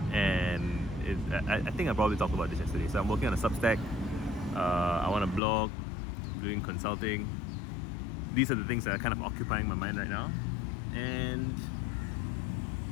and I think I probably talked about this yesterday. So I'm working on a Substack. I want to blog, doing consulting. These are the things that are kind of occupying my mind right now.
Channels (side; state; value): right; drops out; at 5.4 s